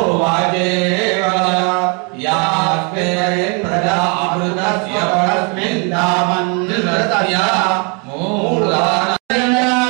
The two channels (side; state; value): left; quieter; 32.5 dB